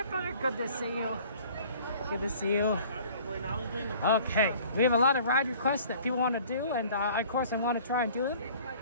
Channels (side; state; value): both; inverted; correlation -0.50